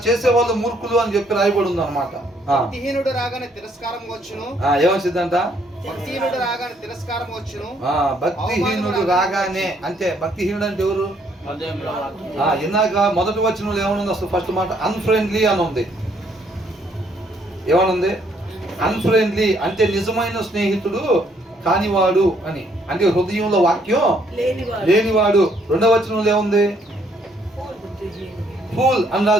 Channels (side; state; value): both; normal; correlation 0.68